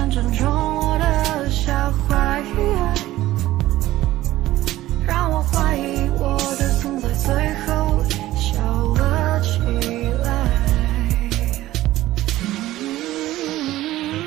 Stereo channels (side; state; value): left; quieter; 15.7 dB